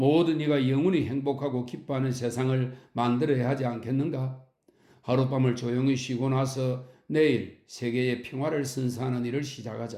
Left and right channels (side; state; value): both; identical; correlation 1.00